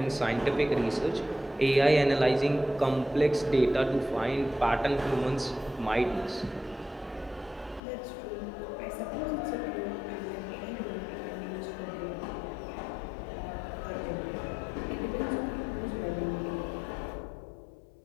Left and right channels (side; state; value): right; drops out; at 7.8 s